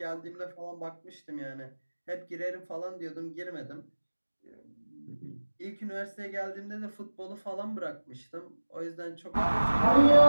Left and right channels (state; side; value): inverted; both; correlation -1.00